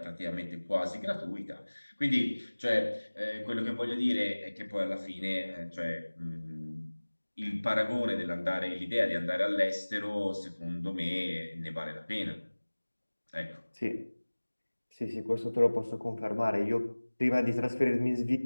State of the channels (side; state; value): both; inverted; correlation -1.00